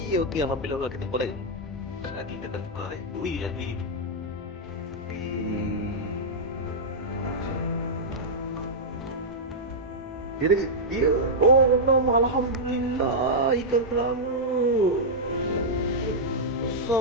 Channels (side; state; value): both; normal; correlation -0.07